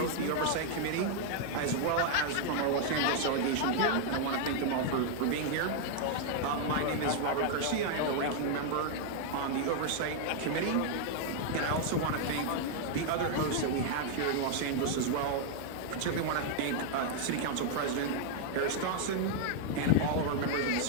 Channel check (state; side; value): different; both; correlation 0.00